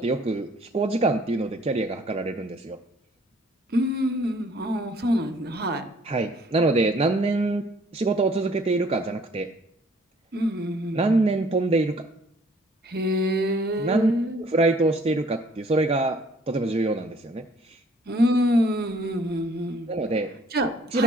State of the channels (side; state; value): both; normal; correlation 0.59